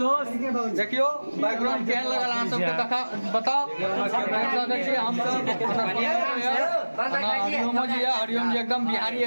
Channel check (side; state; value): both; inverted; correlation -1.00